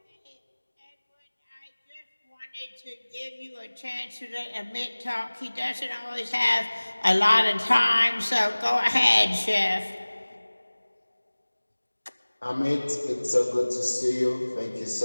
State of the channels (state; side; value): inverted; both; correlation -1.00